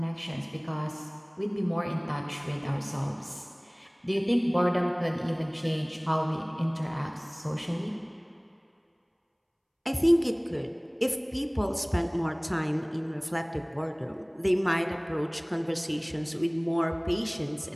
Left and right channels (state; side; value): identical; both; correlation 1.00